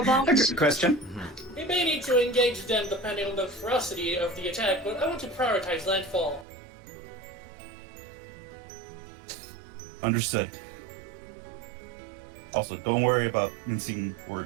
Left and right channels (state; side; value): drops out; left; at 6.5 s